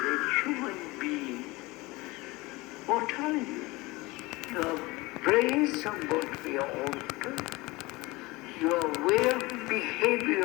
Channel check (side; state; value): right; quieter; 22.2 dB